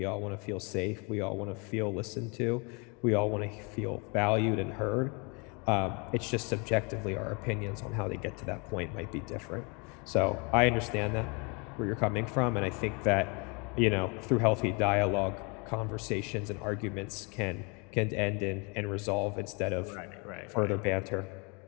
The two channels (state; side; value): quieter; right; 31.8 dB